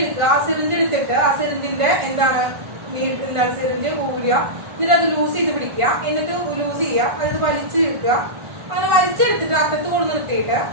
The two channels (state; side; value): late; left; 1.5 ms